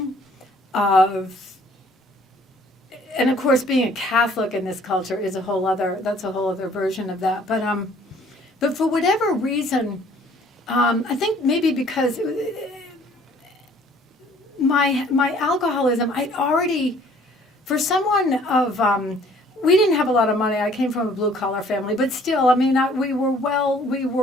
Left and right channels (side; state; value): both; normal; correlation 0.57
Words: and of course, being a Catholic in this culture is a whole other version of that. But for whatever reason, I think maybe because my alcoholism, I'd already, for someone of, we didn't have a lot of money. I came from a blue collar family, but still, we